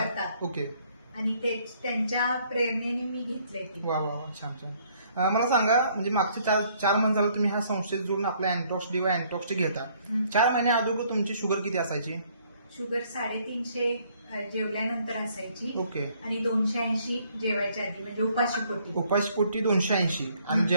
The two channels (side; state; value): both; inverted; correlation -0.64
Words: करतात. ओके. आणि त्यांच्या प्रेरणेने मी घेतलंय ते. वा वा वा, छान छान. मला सांगा, म्हणजे मागच्या चार महिने झालं तुम्ही ह्या संस्थेत जोडून आपल्या अँटॉक्स डी व अँटॉक्स टी घेता. 4 महिने अगोदर तुमची शुगर किती असायची? शुगर 350 जेवल्यानंतर असायची. ओके. आणि 280 जेवायच्या आधी, म्हणजे उपाशीपोटी. उपाशीपोटी 280 आणि